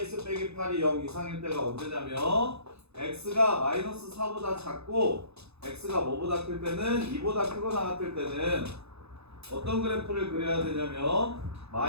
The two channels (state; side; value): late; left; 0.79 ms